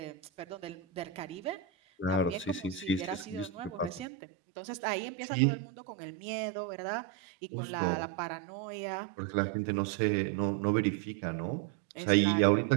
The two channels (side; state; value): left; drops out; at 4.0 s